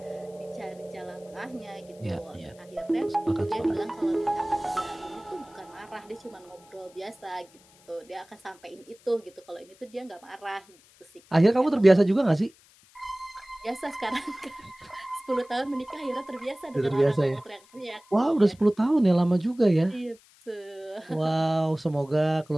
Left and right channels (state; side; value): noise; left; hiss, 28 dB below the sound